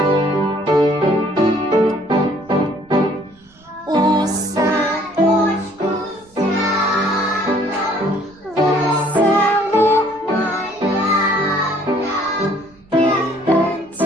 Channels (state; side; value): noise; right; rumble, 30 dB below the sound